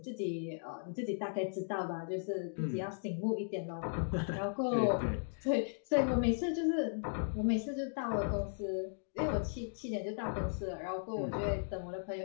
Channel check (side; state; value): right; silent; digital silence